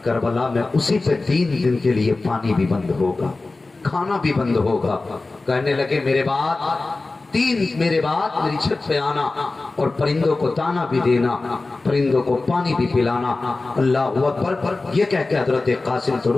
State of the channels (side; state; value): right; quieter; 3.4 dB